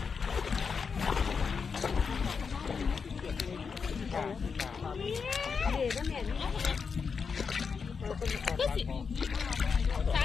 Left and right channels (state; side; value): quieter; right; 5.6 dB